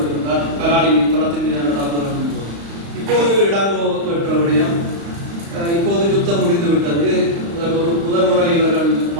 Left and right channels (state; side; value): late; left; 35 ms